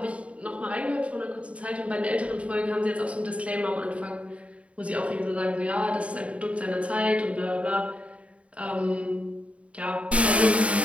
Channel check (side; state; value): left; late; 0.064 ms